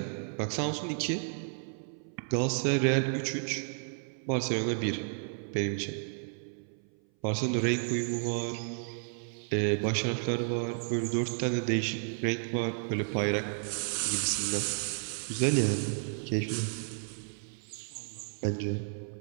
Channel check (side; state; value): left; silent; 56 dB below the other